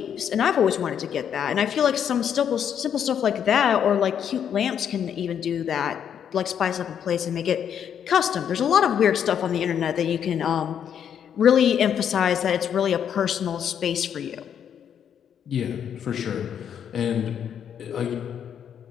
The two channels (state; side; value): quieter; right; 8.6 dB